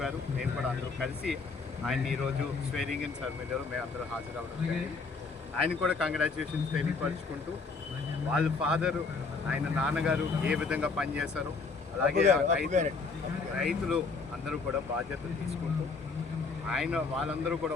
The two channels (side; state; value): right; quieter; 4.4 dB